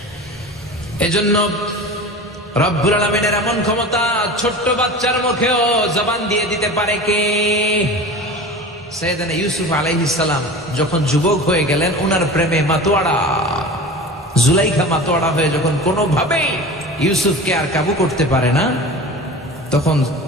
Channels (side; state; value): both; normal; correlation 0.34